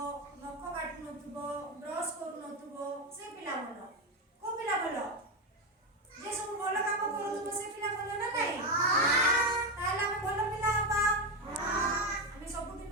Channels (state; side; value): normal; both; correlation 0.11